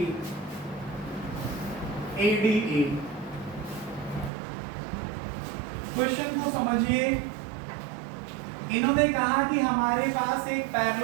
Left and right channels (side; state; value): left; drops out; at 4.3 s